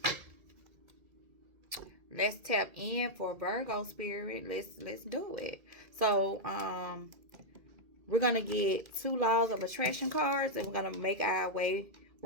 Let's tap in for Virgo spirit. Let's do it. So, we're gonna get 2 laws of attraction cards, and we're gonna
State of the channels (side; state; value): left; late; 2.1 ms